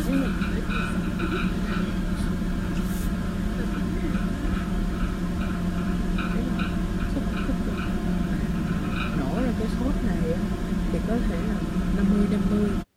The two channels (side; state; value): both; identical; correlation 1.00